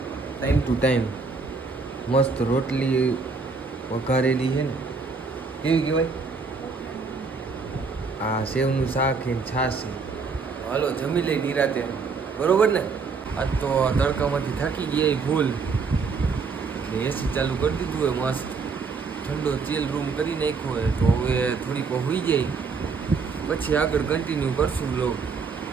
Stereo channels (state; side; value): quieter; left; 4.7 dB